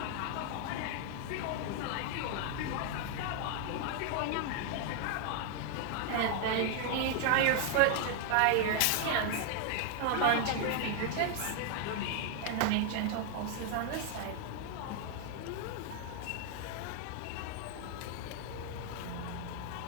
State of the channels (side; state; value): both; different; correlation 0.00